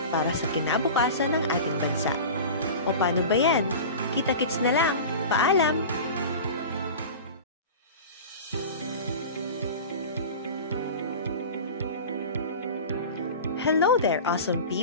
para sa kinabukasan ng ating bansa. O paano ba yan? Kita-kits na lang. Paalam! Hello there, awesome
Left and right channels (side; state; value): both; inverted; correlation -0.33